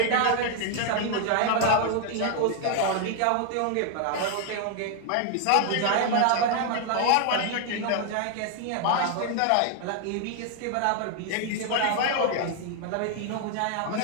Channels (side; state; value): both; different; correlation 0.00